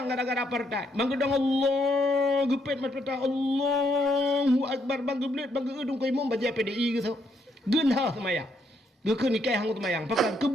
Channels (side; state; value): both; normal; correlation 0.74